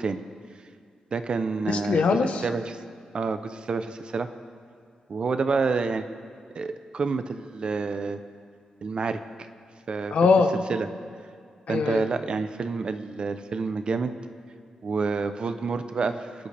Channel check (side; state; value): both; normal; correlation 0.82